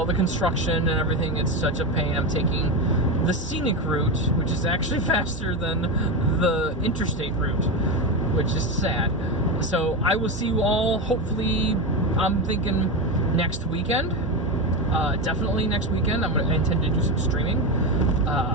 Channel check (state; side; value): normal; both; correlation 0.15